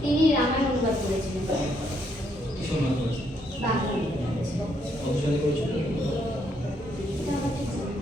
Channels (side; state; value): both; normal; correlation 0.73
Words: তিনি রামায়ণ অনুবাদ করেছিলেন। কিসব অনুবাদ করেছেন? বাংলা অনুবাদ করেছিলেন। কত সালে করেছেন? এটা আমার ঠিক জানা